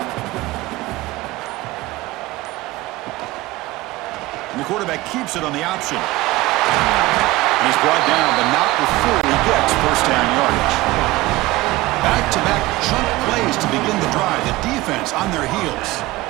And the quarterback keeps it on the option. And he's brought down, but not before he gets first down yardage. Back-to-back chunk plays to begin the drive. The defense on their heels.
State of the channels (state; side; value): quieter; left; 19.2 dB